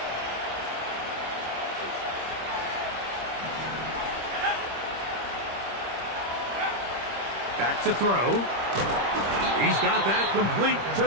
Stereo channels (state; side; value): late; left; 25 ms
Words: Back to throw. He's got that complete to